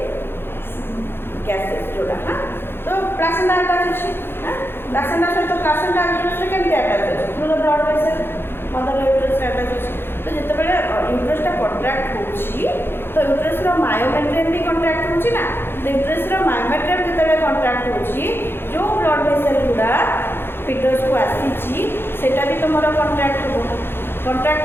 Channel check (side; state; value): right; late; 0.11 ms